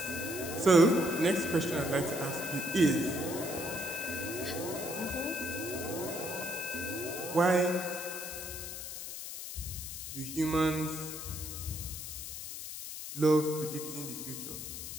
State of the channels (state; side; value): noise; left; hiss, 8 dB below the sound